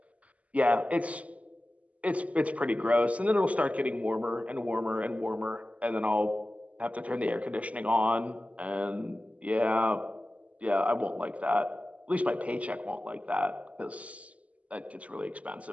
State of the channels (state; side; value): late; left; 0.068 ms